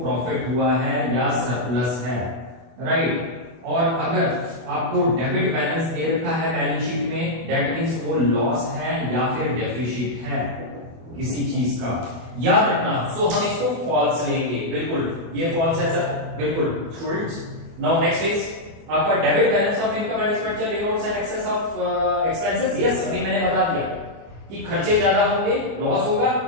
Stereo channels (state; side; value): late; left; 24 ms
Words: हुआ है या सरप्लस है, राइट। और अगर आपको डेबिट बैलेंस दे रखा है बैलेंस शीट में, दैट मींस वो लॉस है या फिर डेफिसिट है किसी चीज का, याद रखना। सो हम इसको फॉल्स लेंगे, बिल्कुल ये फॉल्स है सर, बिल्कुल स्टूडेंट्स। नाउ नेक्स्ट इज आपका debit balance of income and expenditure denotes an excess of expenses, yes अभी मैंने बता दिया कि खर्चे ज्यादा होंगे लॉस होगा,